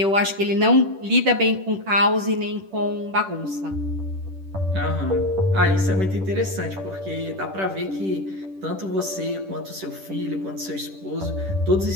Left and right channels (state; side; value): late; left; 10 ms